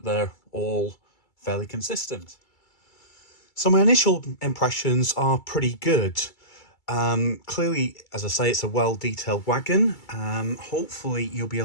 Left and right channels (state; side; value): late; right; 2.3 ms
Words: they're all fairly consistent. So my initial impressions are pretty good. Clearly, as I say, it's a well-detailed wagon. Hopefully you'll be